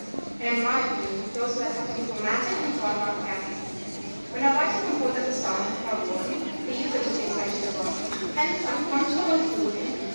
And in my opinion, those words have to be romantic and thought about carefully. When a writer composes a song or poem, they use it to express the world. Hence, I'm comfortable in concluding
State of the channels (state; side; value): inverted; both; correlation -1.00